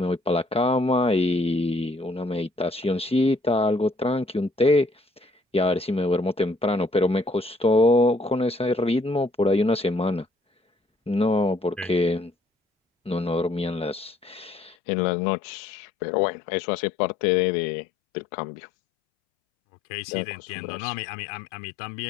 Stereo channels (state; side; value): drops out; right; at 14.8 s